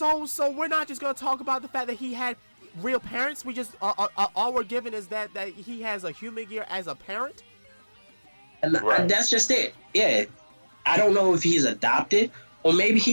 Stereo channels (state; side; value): inverted; both; correlation -1.00